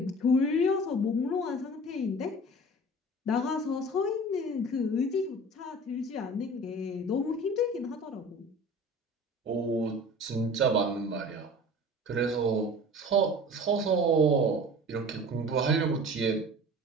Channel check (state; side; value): normal; both; correlation 0.41